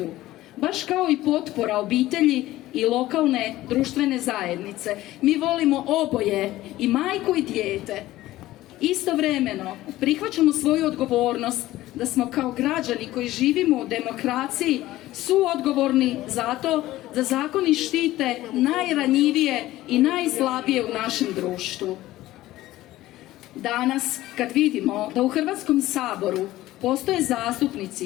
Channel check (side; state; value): right; quieter; 16.1 dB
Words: baš kao i potpora obitelji i lokalne društvene zajednice. Mi volimo oboje, i majku i dijete. Istovremeno prihvaćamo svoju odgovornost da smo kao građani koji živimo u demokraciji suodgovorni za to da zakoni štite najranjivije i najslabije u našem društvu. Danas, kad vidimo da u Hrvatskom saboru postoje